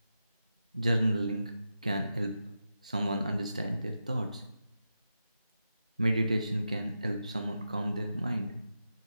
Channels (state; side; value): inverted; both; correlation -0.89